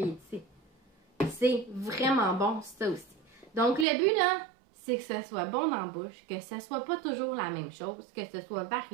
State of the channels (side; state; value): left; drops out; at 3.9 s